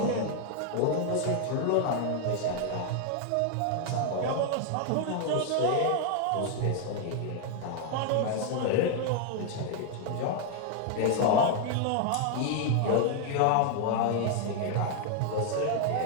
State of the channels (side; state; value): both; different; correlation 0.00